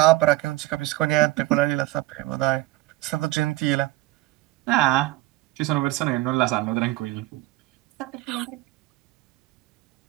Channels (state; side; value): quieter; left; 18.3 dB